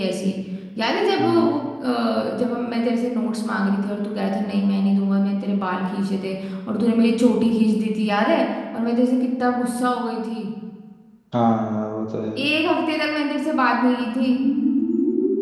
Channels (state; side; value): identical; both; correlation 1.00